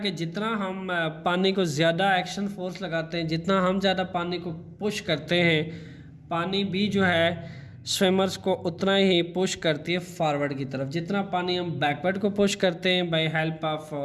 जितना हम पानी को ज़्यादा एक्शन फोर्स लगाते हैं, जितना हम ज़्यादा पानी को पुश करते हैं, पानी भी जो है स्विमर्स को उतना ही पुश करती है फॉरवर्ड की तरफ। जितना पानी हम बैकवर्ड को पुश करते हैं by help of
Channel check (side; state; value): both; identical; correlation 1.00